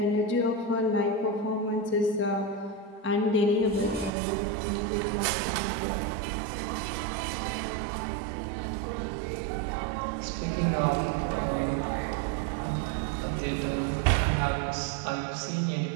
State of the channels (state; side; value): drops out; left; at 4.1 s